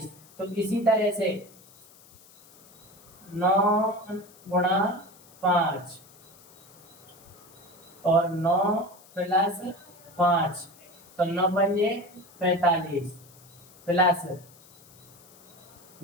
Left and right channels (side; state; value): left; noise; hiss, 25 dB below the sound